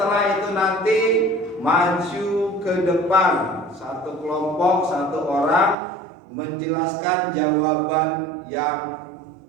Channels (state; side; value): drops out; left; at 5.8 s